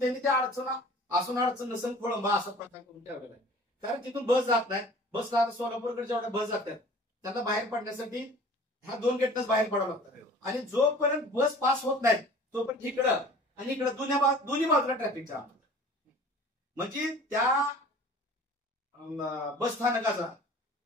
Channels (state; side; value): normal; both; correlation 0.46